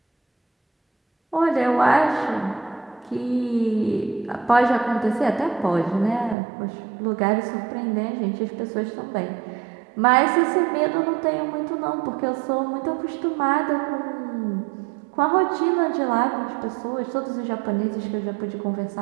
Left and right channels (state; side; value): drops out; left; at 6.4 s